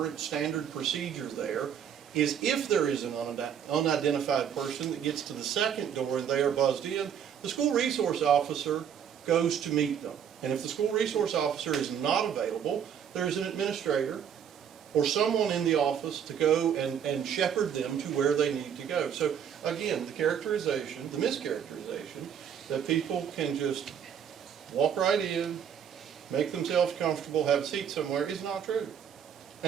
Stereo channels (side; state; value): left; quieter; 8.4 dB